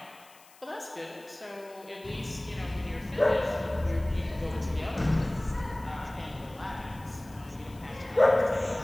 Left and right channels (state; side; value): noise; left; hiss, 25 dB below the sound